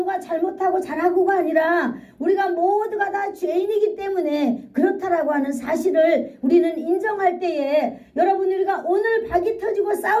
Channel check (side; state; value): both; identical; correlation 1.00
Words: 잘못하고 잘하고가 아니라 우리가 모두가 다 죄인이기 때문에 그렇다라고 하는 사실을 우리는 인정할 때에, 여러분, 우리가 오늘 박이 터지고